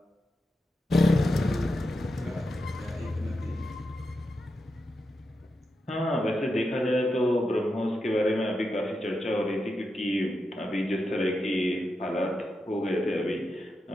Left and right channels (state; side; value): normal; both; correlation 0.88